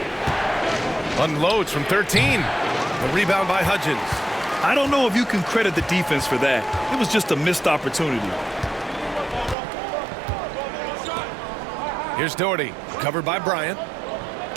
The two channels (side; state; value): left; drops out; at 9.6 s